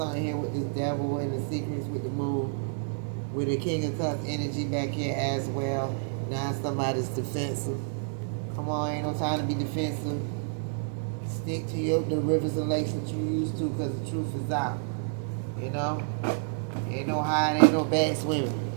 here with this devil and the secrets with the moon. With the King of Cups energy back here as well. Now somebody's defensive. Come on, ain't no time to be defensive. Stick to the rivers and lakes that you used to, because the truth is out. You know? Ain't no hiding, ain't no bad swimming.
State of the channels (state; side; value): silent; left; digital silence